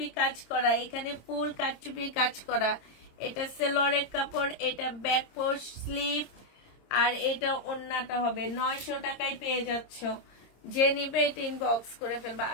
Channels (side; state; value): right; late; 26 ms